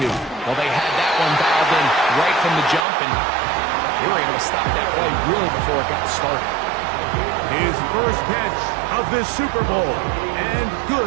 Well, they had that one dialed in right from the jump, and they were able to stop that play really before it got started. His first catch of this Super Bowl, and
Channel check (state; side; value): drops out; left; at 2.9 s